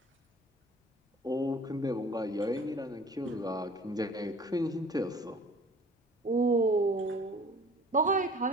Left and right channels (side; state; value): both; normal; correlation 0.47